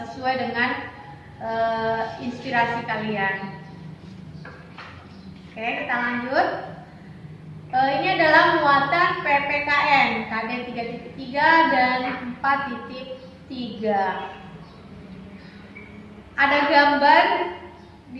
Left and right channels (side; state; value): both; identical; correlation 1.00